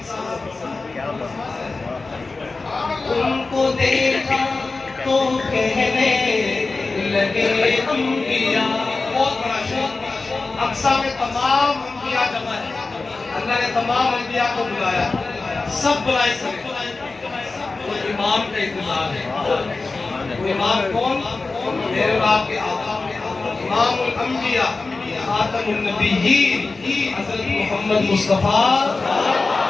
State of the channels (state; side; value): quieter; right; 3.7 dB